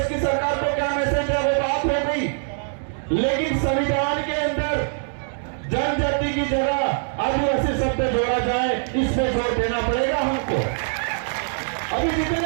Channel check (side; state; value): left; silent; digital silence